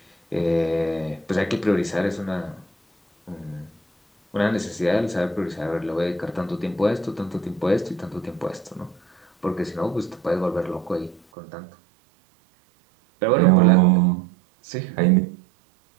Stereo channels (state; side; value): drops out; left; at 11.2 s